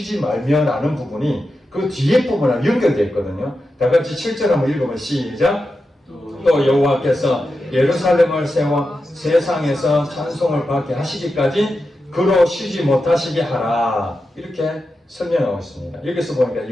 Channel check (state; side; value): normal; both; correlation 0.90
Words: 말며라는 부분이 그 뒤에 부분하고 연결되어 있거든요. 다 같이 7절 한번 읽으면 시작. 또 여호와께서 예루살렘을 세워 세상에서 찬송을 받게 하시기까지 그로 쉬지 못하시게 하라. 이렇게 설명하고 있습니다. 여기서 보니까